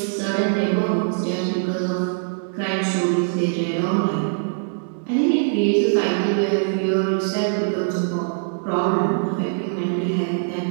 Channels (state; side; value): silent; left; digital silence